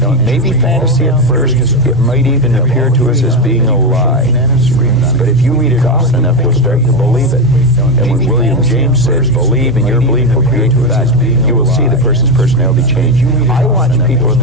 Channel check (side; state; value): both; normal; correlation 0.11